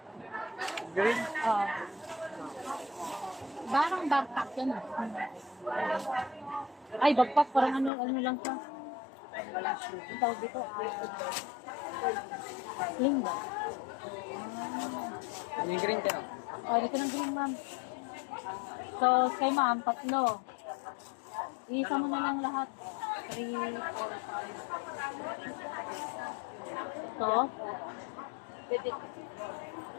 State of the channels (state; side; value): drops out; right; at 7.9 s